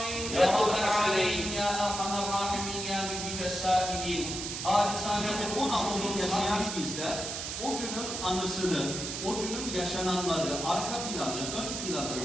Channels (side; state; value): right; noise; hiss, 5 dB below the sound